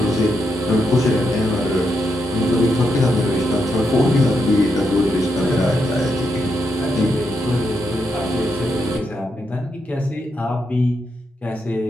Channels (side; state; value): both; normal; correlation 0.82